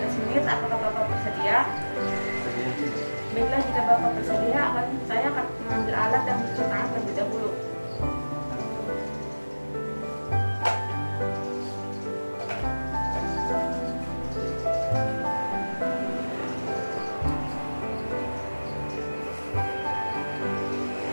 menit. Apakah Bapak bersedia? Baiklah, jika Bapak bersedia, saya akan mengambil alat dan mencuci tangan terlebih dahulu.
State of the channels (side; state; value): both; inverted; correlation -1.00